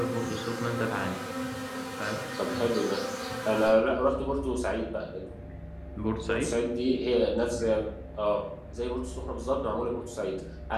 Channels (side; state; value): both; identical; correlation 1.00